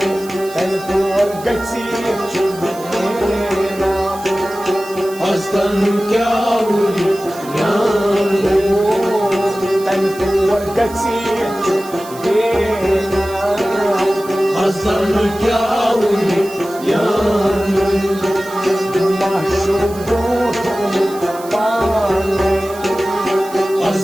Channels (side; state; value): right; noise; hiss, 18 dB below the sound